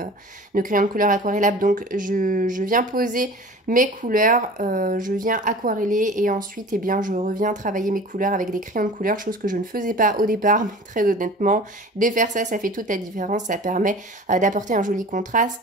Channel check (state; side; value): normal; both; correlation 0.41